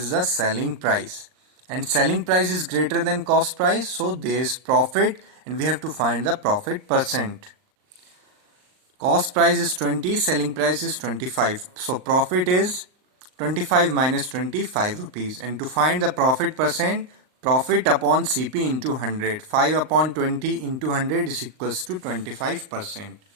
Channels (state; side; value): late; left; 39 ms